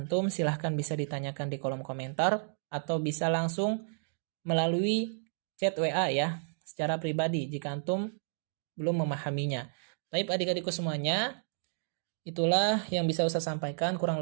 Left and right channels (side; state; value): left; silent; digital silence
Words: silahkan bisa ditanyakan di kolom komentar atau bisa langsung melalui chat WA ya, secara pribadi jika antum belum memahaminya. Baik adik-adikku semuanya, itulah yang bisa Ustaz sampaikan. Kurang